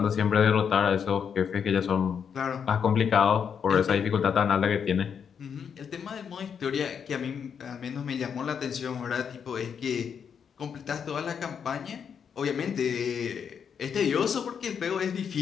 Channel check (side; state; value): right; quieter; 7.2 dB